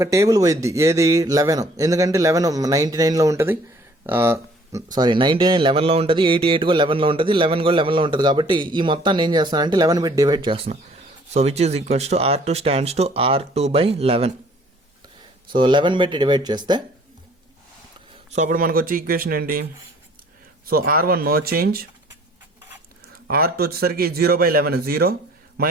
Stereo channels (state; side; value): normal; both; correlation 0.56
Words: టేబుల్ పోయిద్ది, ఏది 11. ఎందుకంటే 11 99లో ఉంటుంది, 99 11లో ఉంటుంది, 88 కూడా 11లో ఉంటుంది, 11 కూడా 11లో ఉంటుంది. కాబట్టి ఈ మొత్తాన్ని ఏం చేస్తానంటే 11 పెట్టి డివైడ్ చేస్తున్నాం. So which is equals to R2 stands to R2/11. So 11 పెట్టి డివైడ్ చేస్తే సో అప్పుడు మనకు వచ్చే ఈక్వేషన్ ఏంటి, so R1 no change, R2 వచ్చేసరికి 0/11 0,